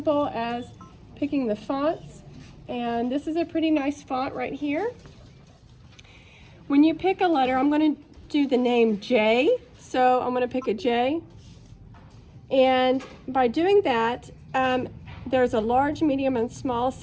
as picking the fonts, and this is a pretty nice font right here. When you pick a letter, I'm going to do the name J, so I'm going to pick a J, and by doing that, there's a large, medium, and small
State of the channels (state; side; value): identical; both; correlation 1.00